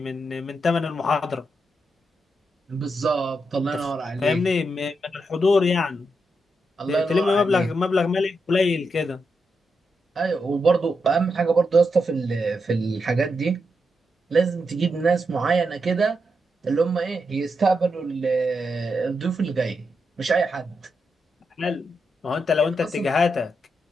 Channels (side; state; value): both; normal; correlation 0.84